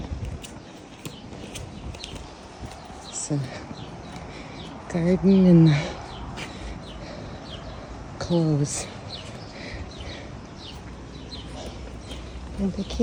It's a garden and clothes. And the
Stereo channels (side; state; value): both; identical; correlation 1.00